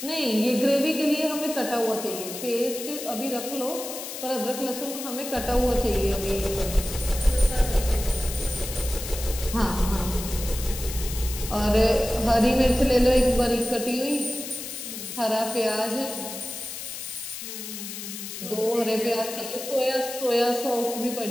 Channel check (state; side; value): noise; left; hiss, 8 dB below the sound